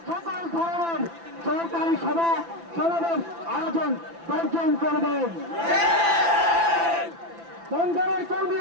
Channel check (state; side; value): late; left; 5.9 ms